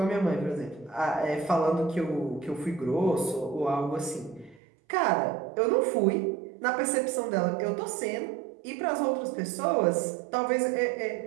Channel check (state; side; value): drops out; left; at 4.6 s